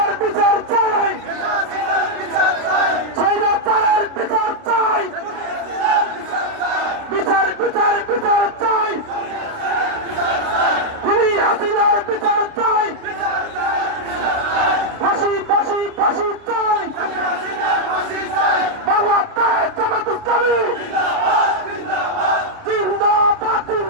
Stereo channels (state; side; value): late; left; 29 ms